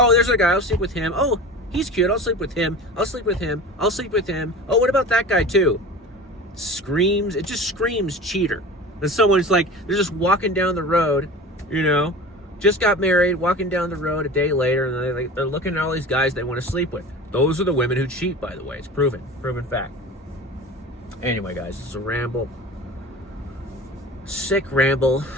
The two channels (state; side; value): normal; both; correlation 0.35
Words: there's a guy, I'll sleep with him. Oh, he's cute, I'll sleep with him. I'll sleep with him. I'll sleep with him. Oh, what about that guy too?" It just screams cheater. And someone's like, they're just walking down the road, just got married, walking down the road a day later, and they're looking at all these guys they want to sleep with. Those are the women who cheat, by the way. It's proven fact. Anyway, guys, it's a ramble. Sick ramble.